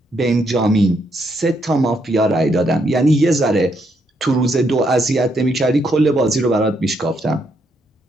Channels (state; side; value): normal; both; correlation 0.76